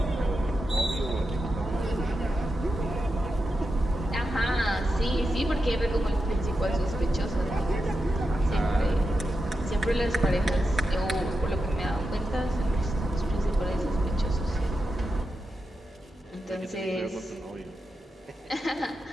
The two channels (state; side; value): normal; both; correlation 0.88